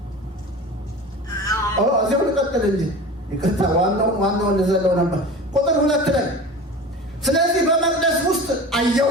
እዚያው ልቀጥል እንጂ ይቅርታ፣ ዋናውን ልዘለው ነበር። ቁጥር 2 ላይ ስለዚህ በመቅደስ ውስጥ አየሁ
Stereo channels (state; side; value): normal; both; correlation 0.34